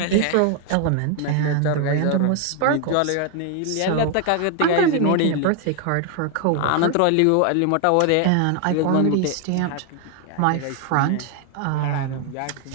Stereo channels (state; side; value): different; both; correlation 0.01